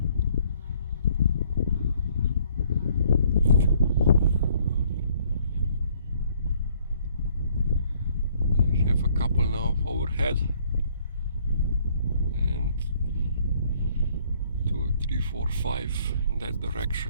I have a couple now overhead, and 3, 4, 5 in that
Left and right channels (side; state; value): both; inverted; correlation -0.63